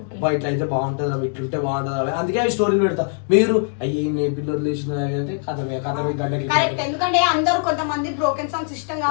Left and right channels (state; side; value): silent; right; 60 dB below the other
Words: అబ్బా ఇట్లా అయితే బాగుంటుంది అవి ఇట్లుంటే బాగుంటుంది అవి, అందుకే అవి స్టోరీలు పెడతా. మీరు అయ్యి నే పిల్లలు లేచిన అంటే కథమే గంటకి కరెక్ట్. ఎందుకంటే అందరూ కొంతమంది బ్రోకెన్ సాంగ్స్ ఇష్టం